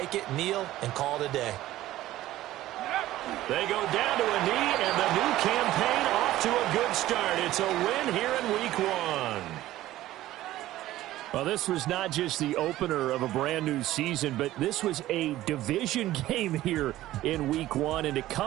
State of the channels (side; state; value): left; quieter; 15.1 dB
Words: it, kneel, and call it a day. They go down to a knee, and the new campaign off to a good start. It's a win here in week 1. Well, this was not just the opener of a brand new season, but this was a division game here in week 1. And to